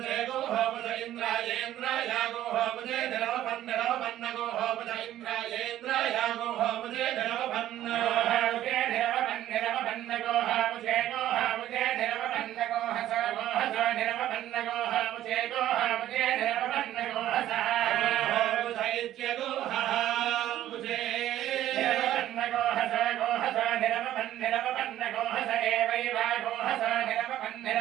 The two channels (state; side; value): quieter; left; 12.9 dB